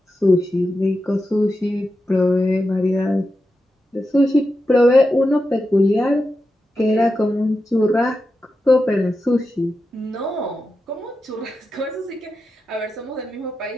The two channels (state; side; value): normal; both; correlation 0.89